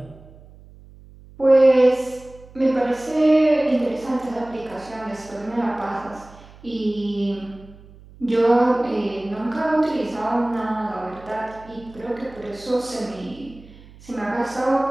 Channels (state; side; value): noise; right; hum, 22 dB below the sound